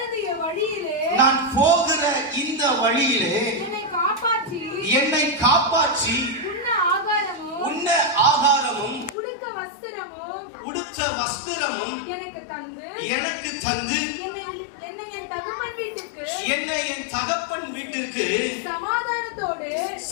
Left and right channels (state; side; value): drops out; right; at 9.2 s